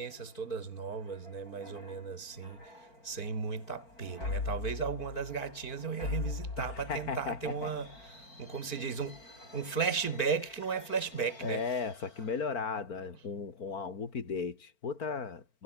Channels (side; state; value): right; late; 4.4 ms